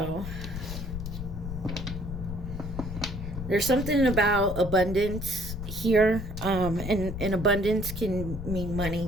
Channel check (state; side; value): noise; left; rumble, 6 dB below the sound